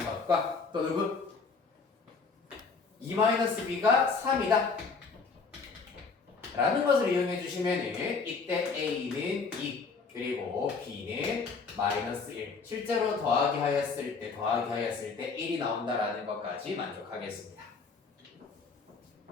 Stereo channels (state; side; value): quieter; right; 4.7 dB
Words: 것과 또 누구? 2-b가 3이다 라는 것을 이용해 주시면 이때 a는 2 그리고 b는 마이너스 1 실제로 더하기 하였을 때 1이 나온다라는 것까지 만족하겠습니다.